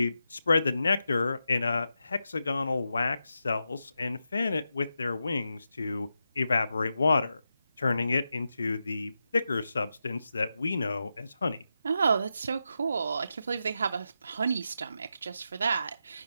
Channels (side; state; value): both; inverted; correlation -0.88